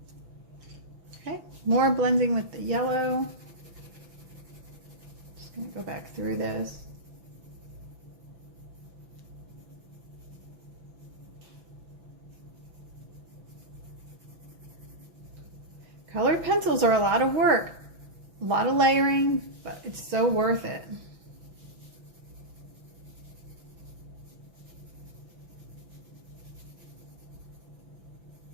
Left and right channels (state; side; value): late; left; 6.0 ms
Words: Okay, more blending with the yellow. Just going to go back through this. Colored pencils are a lot of work. A lot of layering, but it's so worth it.